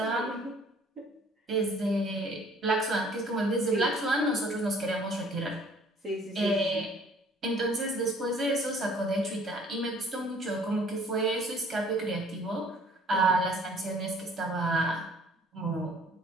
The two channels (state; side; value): normal; both; correlation 0.56